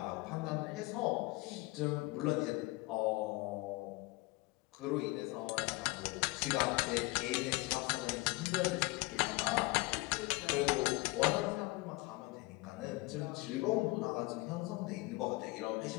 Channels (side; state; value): right; quieter; 23.1 dB